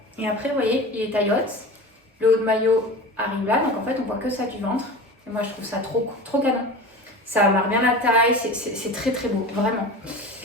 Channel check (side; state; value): both; normal; correlation 0.32